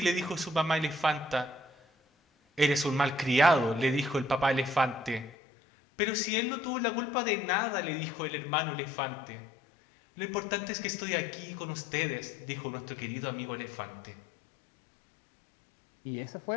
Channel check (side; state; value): right; drops out; at 5.3 s